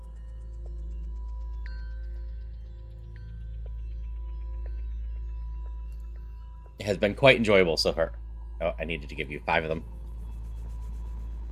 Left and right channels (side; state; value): both; identical; correlation 1.00